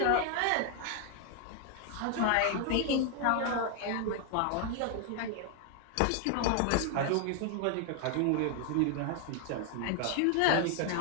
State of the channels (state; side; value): different; both; correlation 0.00